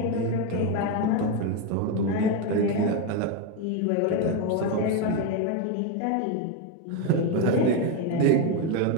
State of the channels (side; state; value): both; different; correlation 0.03